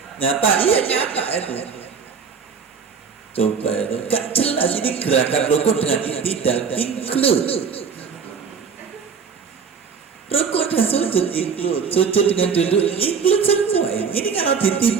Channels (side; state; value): left; quieter; 6.1 dB